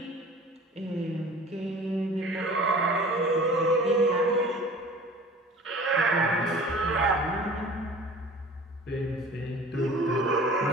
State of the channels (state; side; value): normal; both; correlation 0.44